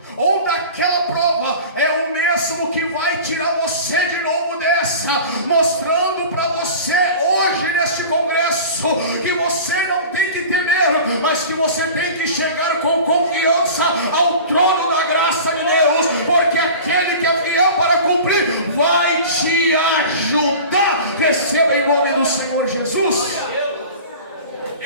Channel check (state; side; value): inverted; both; correlation -0.38